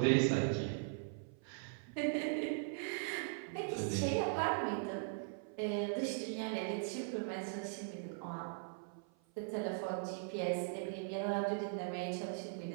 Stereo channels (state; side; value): silent; left; 51 dB below the other